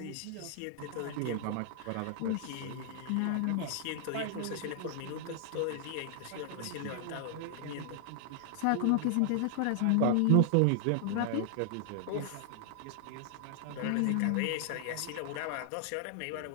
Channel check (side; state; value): both; different; correlation 0.00